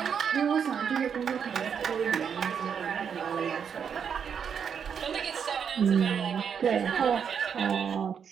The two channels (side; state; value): left; quieter; 7.3 dB